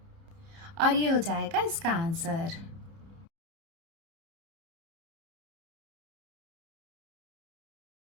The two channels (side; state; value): left; late; 30 ms